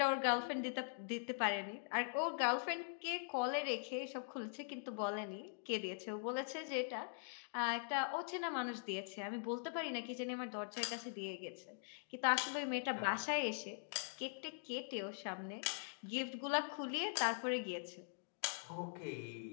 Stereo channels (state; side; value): silent; right; digital silence